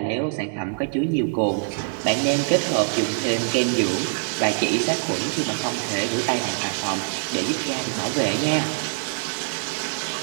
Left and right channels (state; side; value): silent; left; digital silence